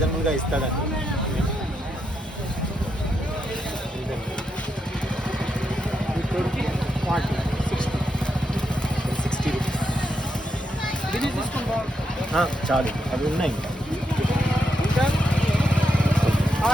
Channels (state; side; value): normal; both; correlation 0.82